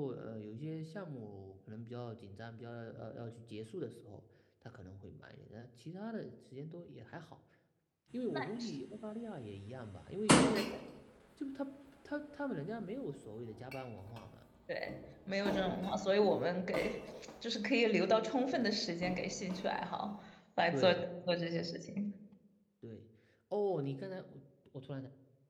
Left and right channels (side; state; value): both; identical; correlation 1.00